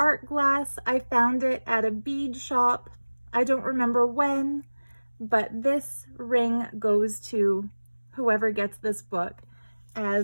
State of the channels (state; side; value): inverted; both; correlation -1.00